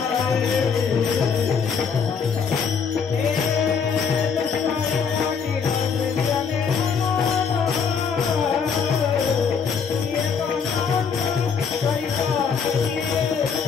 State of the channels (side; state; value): right; quieter; 6.2 dB